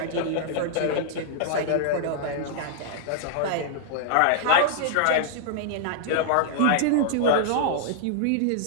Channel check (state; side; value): different; both; correlation -0.01